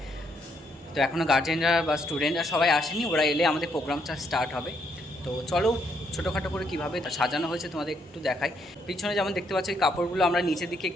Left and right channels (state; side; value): normal; both; correlation 0.74